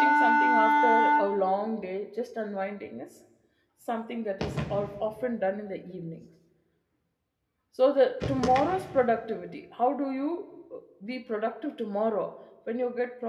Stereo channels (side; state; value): both; identical; correlation 1.00